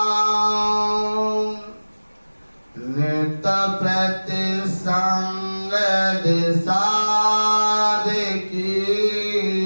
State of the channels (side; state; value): both; inverted; correlation -1.00